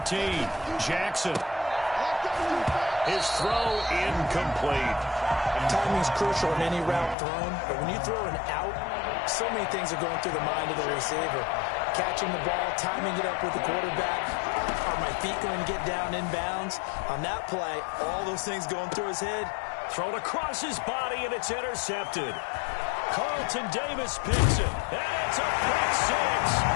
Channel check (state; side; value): drops out; right; at 7.2 s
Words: Jackson. His throw incomplete. Timing's crucial in any route thrown, but when you throw an out, so many things are going through the mind of the receiver. Catching the ball, timing it up with the quarterback. Are my feet going to get down in bounds? On that play, all those things going through his head. Thrown across his body, and it's intercepted. Carlton Davis picks it, and it's a pick 6.